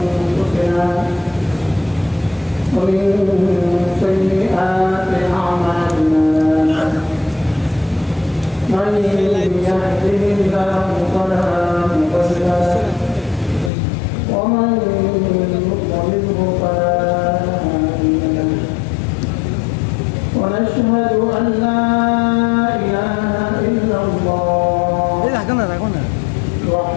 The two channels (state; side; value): drops out; right; at 13.7 s